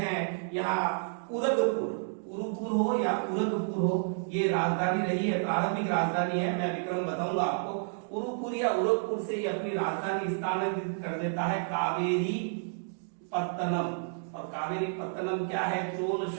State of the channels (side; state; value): left; silent; digital silence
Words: यहाँ उरगपुर, उरुपुर हो या उरगपुर हो, ये राजधानी रही है, प्रारंभिक राजधानी है। मैं विक्रम बताऊंगा आपको। उरुपुर या उरगपुर से ये अपनी राजधानी स्थानांतरित कर देता है कावेरी पत्तनम। और कावेरी पत्तनम क्या है, चोल